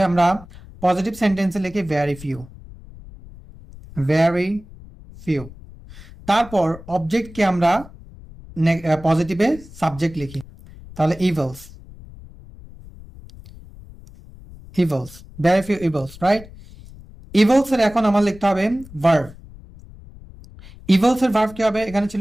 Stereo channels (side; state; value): left; noise; rumble, 19 dB below the sound